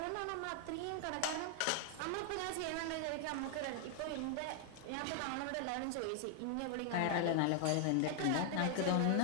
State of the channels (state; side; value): different; both; correlation 0.00